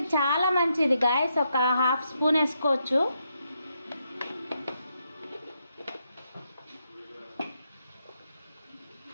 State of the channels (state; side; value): inverted; both; correlation -0.80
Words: చాలా మంచిది గాయస్. ఒక 1/2 స్పూన్ వేసుకోవచ్చు.